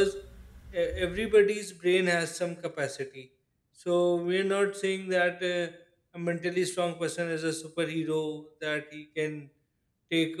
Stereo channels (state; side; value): identical; both; correlation 1.00